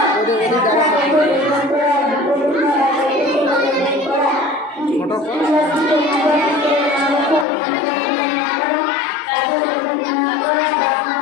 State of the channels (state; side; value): drops out; right; at 7.5 s